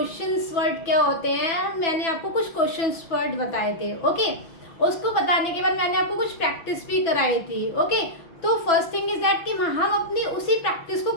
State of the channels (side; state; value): right; late; 6.1 ms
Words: वर्ड क्या होते हैं, मैंने आपको कुछ क्वेश्चंस वर्ड बताए थे। ओके, उसको बताने के बाद मैंने आपको कुछ प्रैक्टिस भी कराई थी। ओके, तो फर्स्ट थिंग इज दैट कि हम अपनी उसी प्रैक्टिस को